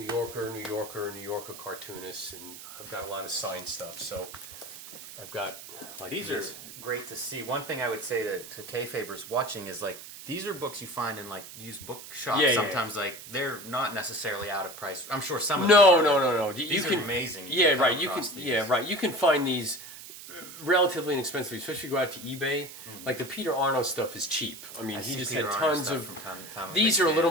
Yorker, New Yorker cartoonists, and I've got a lot of signed stuff. So I've got like These this. are great to see. One thing I would say to Kayfabers watching is like these are books you find in like used bookshops. Yeah, yeah, Sometimes like they're not necessarily out of price. I'm sure some of No. them are. These You are amazing. Yeah, come right. You can. across these. Yeah, right. You can find these relatively inexpensively, especially if you go out to eBay. Like the Peter Arno stuff is cheap. I mean, I he see just Peter had Arno tons stuff of. from time to time. I'm a These big are a little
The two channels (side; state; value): right; noise; hiss, 14 dB below the sound